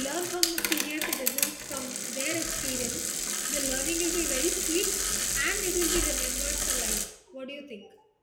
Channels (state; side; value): identical; both; correlation 1.00